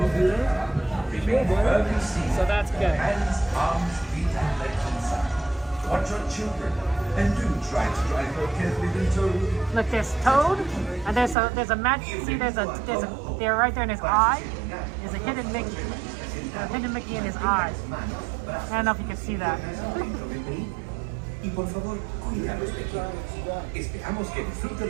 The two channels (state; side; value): drops out; left; at 11.4 s